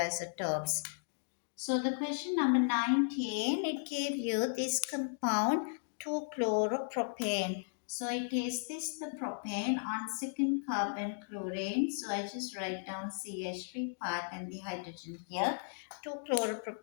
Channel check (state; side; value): silent; right; digital silence